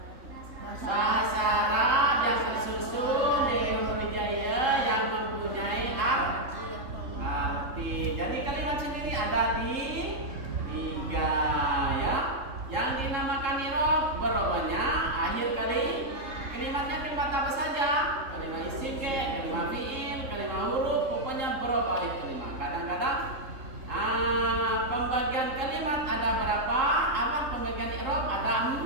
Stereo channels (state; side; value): late; left; 3.7 ms